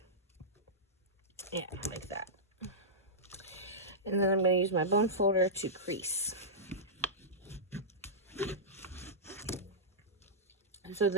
Yeah, like that. And then I'm going to use my bone folder to crease. So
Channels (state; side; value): normal; both; correlation -0.13